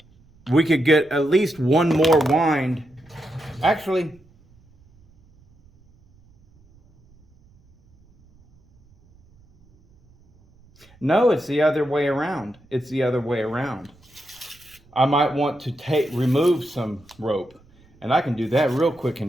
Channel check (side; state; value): right; noise; rumble, 30 dB below the sound